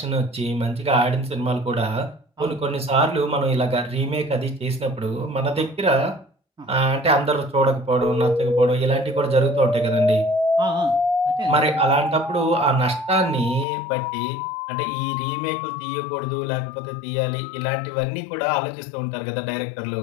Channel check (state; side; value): drops out; right; at 13.7 s